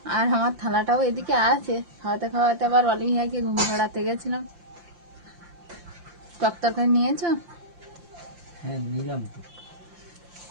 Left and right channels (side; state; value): left; late; 5.8 ms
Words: আর আমার থালাটাও এদিকে আছে। খাওয়াতে খাওয়াতে আবার অলিভিয়াকে ঘুম পাড়াতে গেছিলাম। টক তরকারি নিয়েছো? হ্যাঁ নিলাম তো।